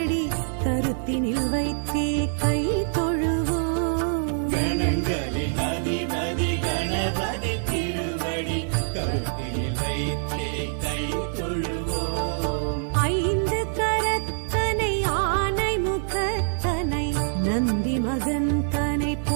கருத்தினில் வைத்தே கை தொழுவோம். கணங்களின் அதிபதி கணபதி திருவடி கருத்தினில் வைத்தே கை தொழுவோம். ஐந்து கரத்தனை ஆனை முகத்தனை நந்தி மகன் தனை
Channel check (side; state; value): left; silent; 62 dB below the other